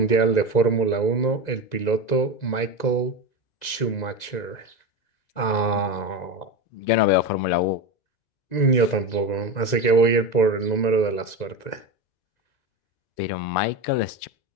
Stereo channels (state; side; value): late; right; 2.0 ms